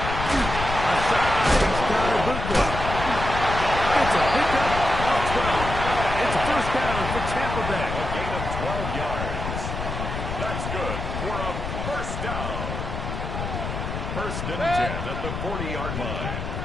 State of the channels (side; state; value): left; noise; rumble, 5 dB below the sound